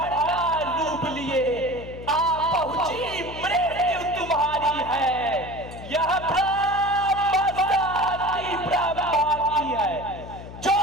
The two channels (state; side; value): noise; left; hum, 13 dB below the sound